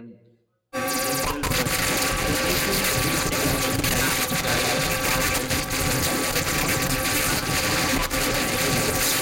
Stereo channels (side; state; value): both; identical; correlation 1.00